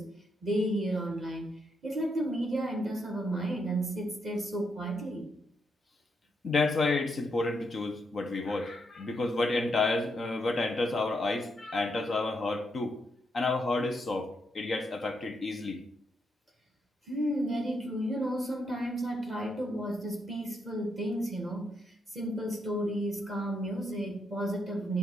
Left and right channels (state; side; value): normal; both; correlation 0.79